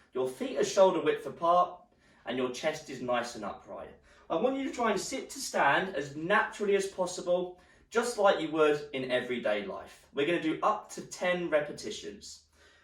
your feet are shoulder width apart, and your chest is nice and upright. I want you to try and sit to stand as naturally as possible, just like you would in everyday life. We're going to do up to 10 repetitions.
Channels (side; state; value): both; identical; correlation 1.00